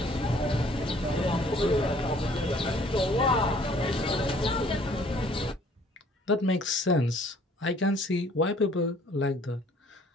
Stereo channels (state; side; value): normal; both; correlation 0.57